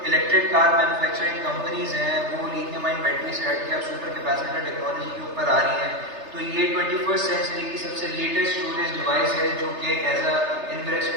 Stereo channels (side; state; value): left; late; 3.3 ms